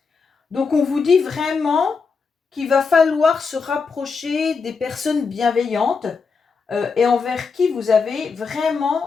Donc, on vous dit vraiment qu'il va falloir se rapprocher des personnes bienveillantes et envers qui vous avez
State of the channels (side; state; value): right; quieter; 5.0 dB